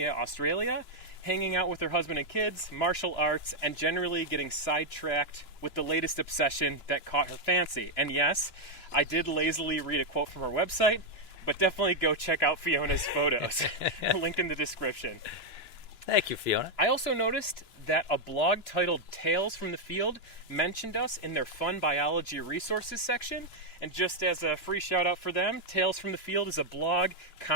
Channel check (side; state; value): right; late; 2.9 ms